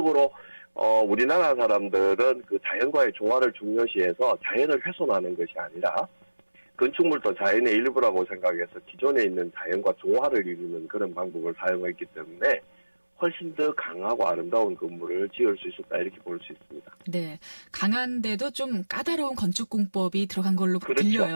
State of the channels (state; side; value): inverted; both; correlation -1.00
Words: 우리나라 사람들은 그 자연과의 조화를 중요시해서 자연을 훼손하는 것이 아니라 건축물도 자연의 일부라고 생각해서 기존에 있는 자연과 조화를 이루는 그런 방법을 사용했기 때문에 훨씬 더 강하고 아름다운 건물을 지을 수 있었다 이렇게 볼 수 있습니다. 네, 강한데도 좀 까다로운 건축 공법이 들어간 걸로 그렇죠.